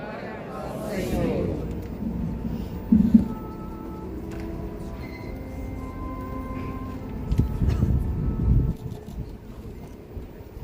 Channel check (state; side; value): identical; both; correlation 1.00